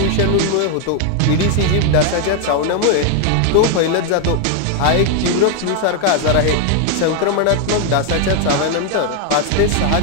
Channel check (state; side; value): different; both; correlation 0.00